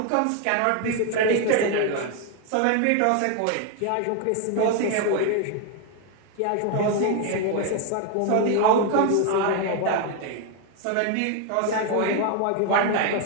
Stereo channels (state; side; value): different; both; correlation 0.01